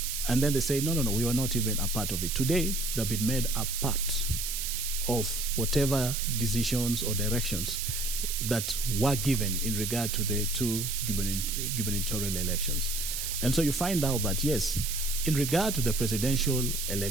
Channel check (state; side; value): noise; right; hiss, 3 dB below the sound